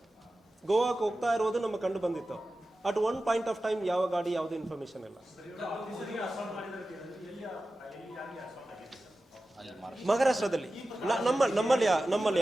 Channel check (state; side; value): normal; both; correlation 0.94